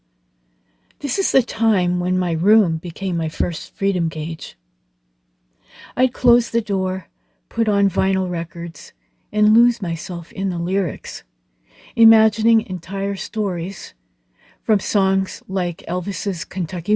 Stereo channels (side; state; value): both; identical; correlation 1.00